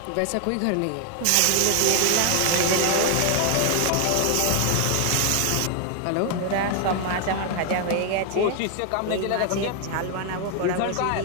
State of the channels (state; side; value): different; both; correlation 0.00